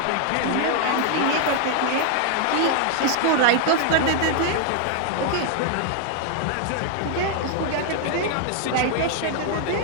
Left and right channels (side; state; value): both; different; correlation 0.00